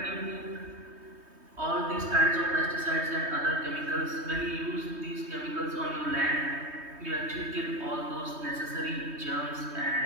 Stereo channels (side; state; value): left; late; 3.2 ms